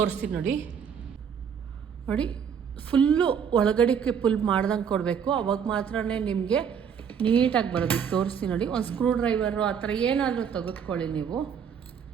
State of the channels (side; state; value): left; quieter; 7.4 dB